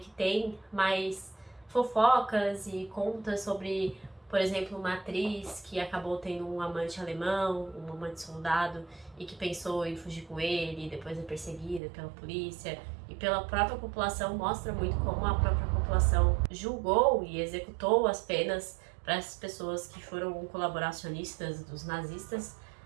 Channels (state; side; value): drops out; left; at 11.8 s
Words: tem mais fofocas e conta sobre, por exemplo, uma atriz que acabou tendo um amante alemão, um amante soldado, e que pensou em fugir com ele, e depois é perseguida pela polícia e pela própria população, mostra muito como a própria população julgou e executou as penas para essas pessoas que foram colaboracionistas dos nazistas,